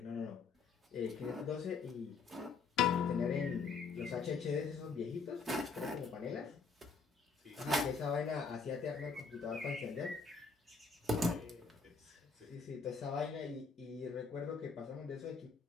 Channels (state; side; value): quieter; right; 4.9 dB